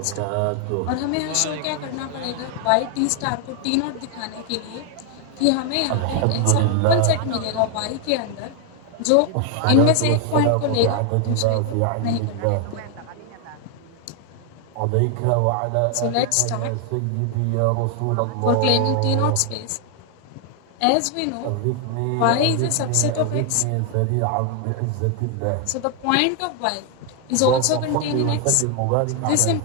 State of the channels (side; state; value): both; different; correlation 0.00